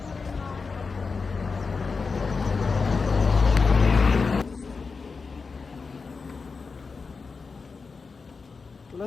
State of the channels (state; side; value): quieter; right; 4.7 dB